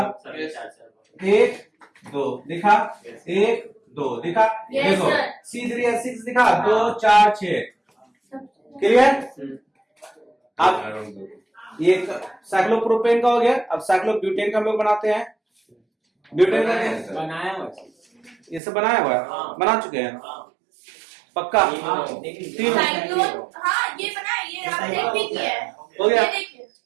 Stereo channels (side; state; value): left; drops out; at 18.6 s